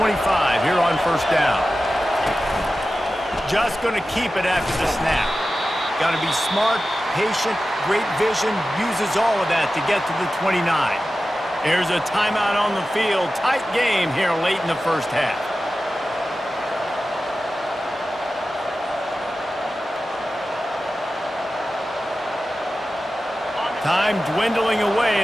here on first down. Just going to keep it after the snap. Got to be smart, patient, great vision, uses all of that to get to the 29. There's a timeout on the field. Tight game here late in the first half. Time dwindling away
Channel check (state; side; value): normal; both; correlation 0.94